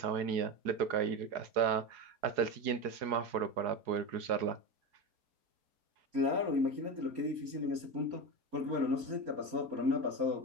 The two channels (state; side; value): late; left; 4.8 ms